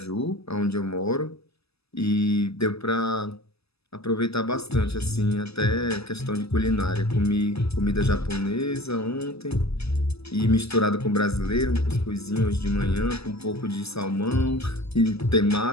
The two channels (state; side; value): late; right; 0.79 ms